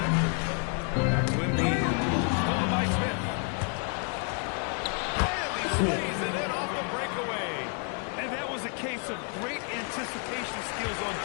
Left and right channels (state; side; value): quieter; right; 39.1 dB